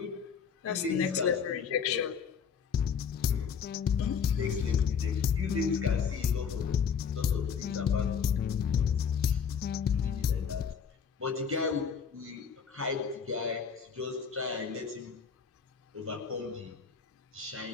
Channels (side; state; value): right; quieter; 6.7 dB